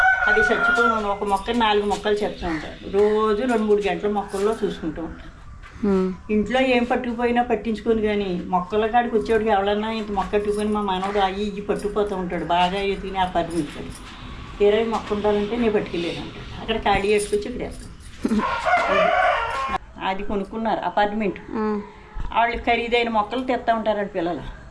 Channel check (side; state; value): both; identical; correlation 1.00